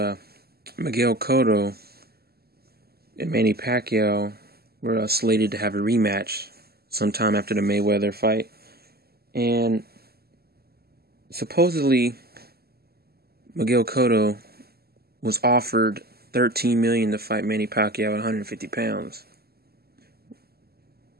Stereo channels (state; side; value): late; left; 0.46 ms